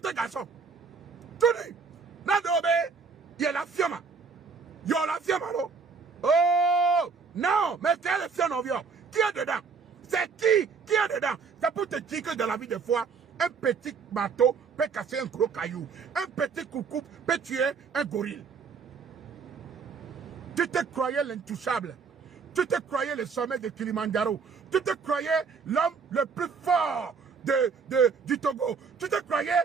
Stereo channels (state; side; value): quieter; left; 5.3 dB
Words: garçon. Tu dis, Nadobe, il y a la fioma. Il y a la fioma, non? Oh, non, mais quel est le fion en viol? Qui est dedans? C'est qui est dedans? C'est pour te dire que dans la vie de foi, un petit bateau peut casser un gros caillou. Un petit coucou peut tuer un gorille. Tu te croyais l'intouchable. Tu te croyais le sommet de Kilimanjaro. Tu te croyais l'homme le plus fort du Togo. Tu te croyais